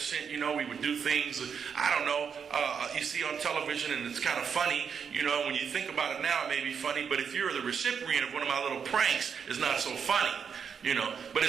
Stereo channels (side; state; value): left; quieter; 6.8 dB